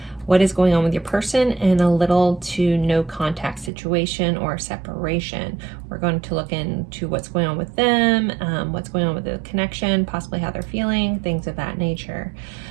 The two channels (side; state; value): left; drops out; at 3.7 s